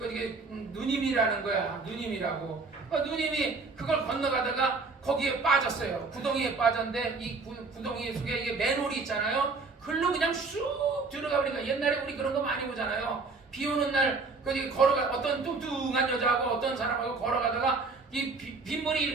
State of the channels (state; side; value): quieter; left; 4.1 dB